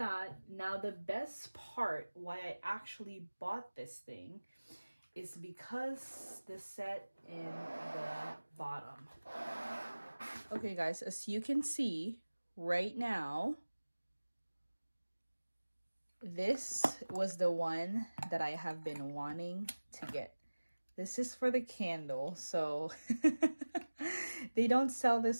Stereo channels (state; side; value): inverted; both; correlation -1.00